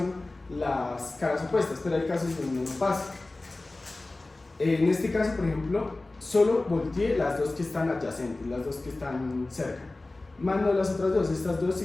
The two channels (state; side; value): quieter; right; 3.0 dB